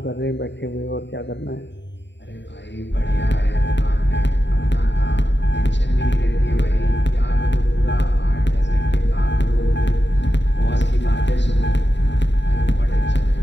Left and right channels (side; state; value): right; late; 0.52 ms